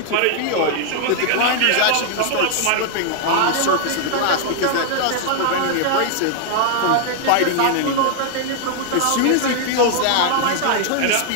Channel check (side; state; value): both; different; correlation 0.00